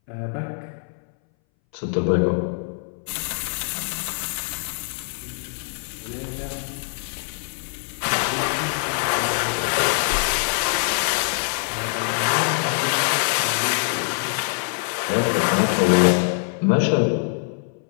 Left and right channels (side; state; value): right; silent; 61 dB below the other